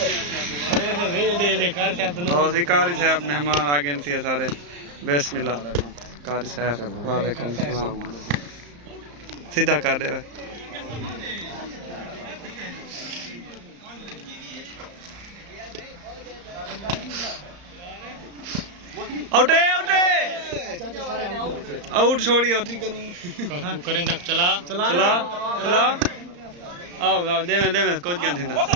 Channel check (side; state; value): left; late; 34 ms